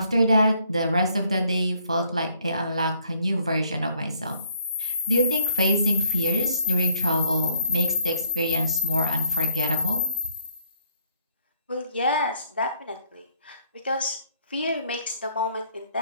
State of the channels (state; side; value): inverted; both; correlation -0.68